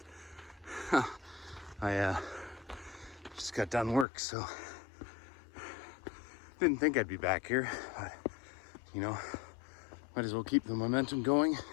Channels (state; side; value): drops out; right; at 4.0 s